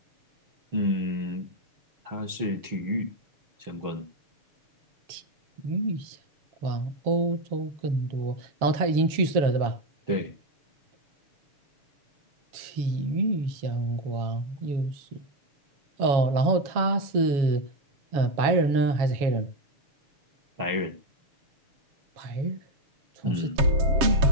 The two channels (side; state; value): left; late; 7.3 ms